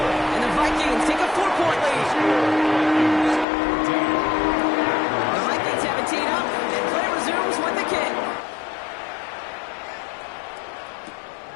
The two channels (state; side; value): drops out; right; at 3.5 s